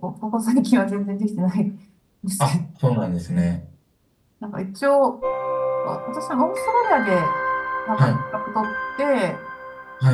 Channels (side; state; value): both; identical; correlation 1.00